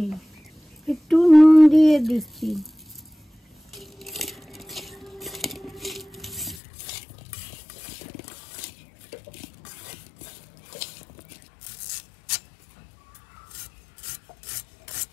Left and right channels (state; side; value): drops out; right; at 6.6 s